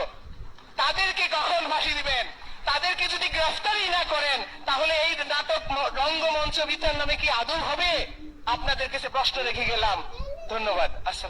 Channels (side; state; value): both; identical; correlation 1.00